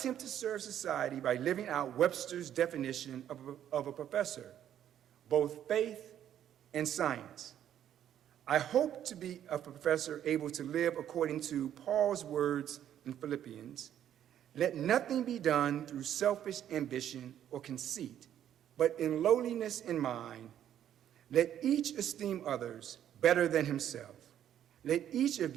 to serve society by living out Webster's definition of a professor, both faith and science. I hope to be a professor able to live according to Paul's words in Philippians, "Let nothing be done through selfish ambition or conceit, but in lowliness in mind, let each esteem others better than himself. Let each of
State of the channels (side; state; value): left; quieter; 10.5 dB